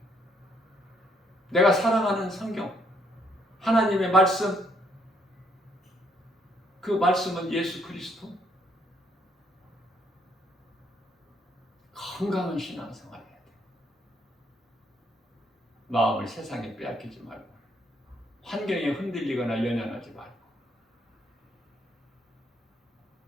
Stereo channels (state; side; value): normal; both; correlation 0.70